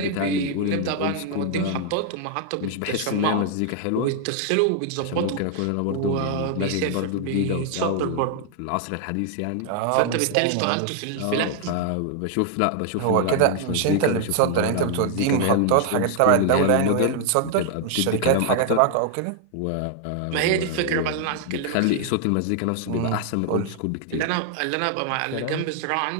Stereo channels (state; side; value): different; both; correlation 0.00